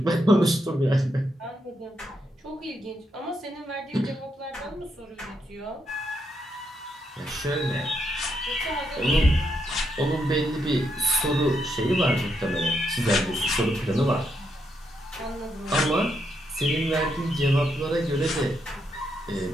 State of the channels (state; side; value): normal; both; correlation 0.80